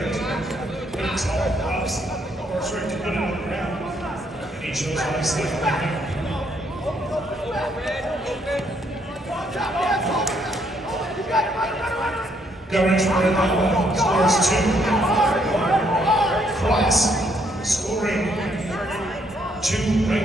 to put it tall props, or sorry, to put it on the ground. And he chose obviously on the ground. Governance for Randhawa scores 2. Cross scoring 2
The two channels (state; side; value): normal; both; correlation 0.71